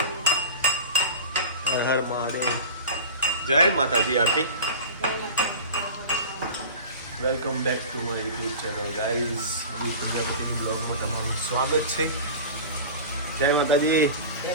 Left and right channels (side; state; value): both; inverted; correlation -0.33